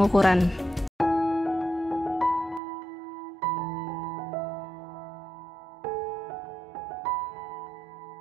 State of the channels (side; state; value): left; drops out; at 2.6 s